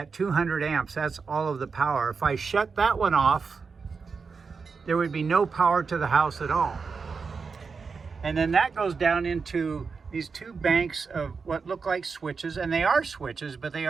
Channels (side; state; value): left; quieter; 5.1 dB